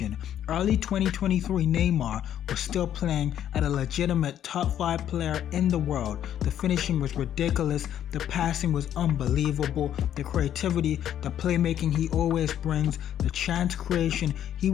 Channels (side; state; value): right; quieter; 10.6 dB